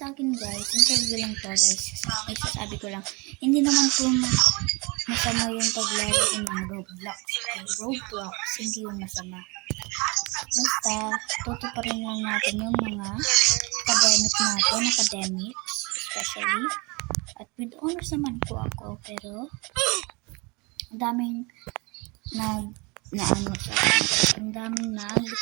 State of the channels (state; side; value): quieter; left; 28.0 dB